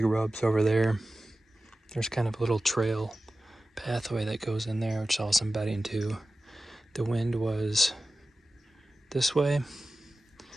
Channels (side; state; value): both; normal; correlation 0.95